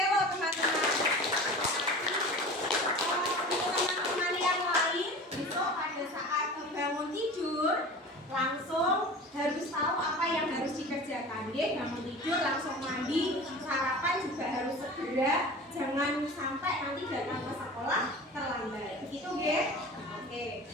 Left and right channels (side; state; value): both; normal; correlation 0.37